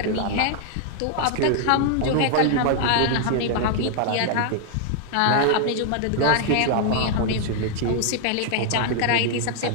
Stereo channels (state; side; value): different; both; correlation 0.00